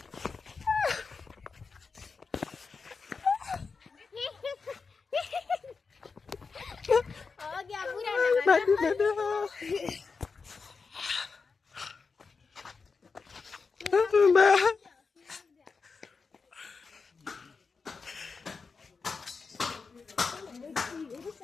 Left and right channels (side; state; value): right; quieter; 4.8 dB